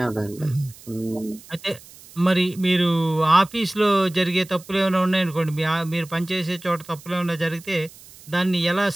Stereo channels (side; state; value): right; noise; hiss, 21 dB below the sound